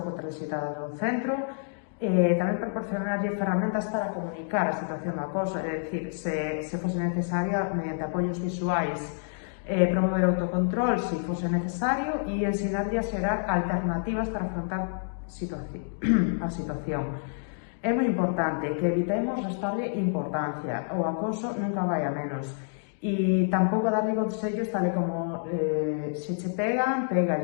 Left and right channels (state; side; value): silent; right; digital silence